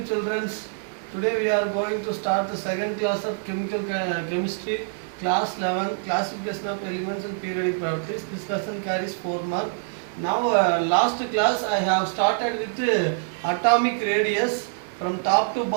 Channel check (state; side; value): silent; left; digital silence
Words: children. Today we are going to start the second class of chemical chemistry, class 11, classification of elements and periodic properties. This lesson carries 4 marks. Now, last class I have started with atomic radius. From top to